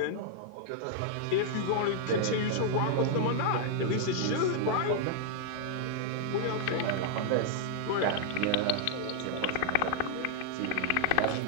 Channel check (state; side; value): different; both; correlation -0.01